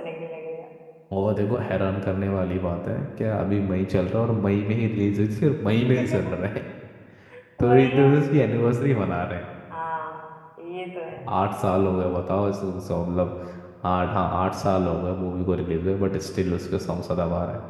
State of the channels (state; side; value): identical; both; correlation 1.00